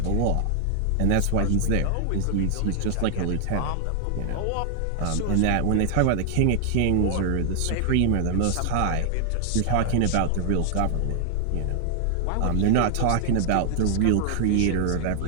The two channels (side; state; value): both; different; correlation 0.00